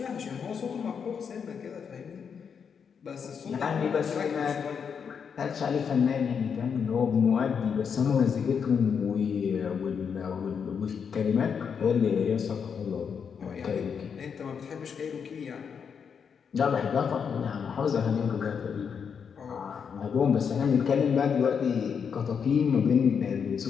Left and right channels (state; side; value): quieter; right; 6.7 dB